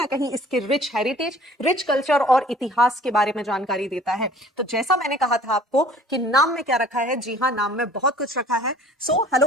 कहीं इसके रिच हेरिटेज, रिच कल्चर और इतिहास के बारे में जानकारी देता है। तो जैसा मैंने कहा था आपको कि नाम में क्या रखा है, जी हाँ, नाम में बहुत कुछ रखा है। So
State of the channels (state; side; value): normal; both; correlation 0.50